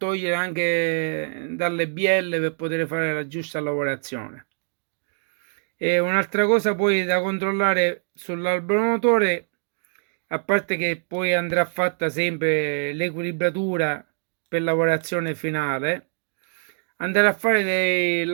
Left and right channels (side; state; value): left; silent; digital silence